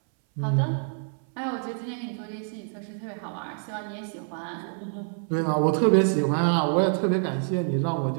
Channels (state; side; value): silent; left; 59 dB below the other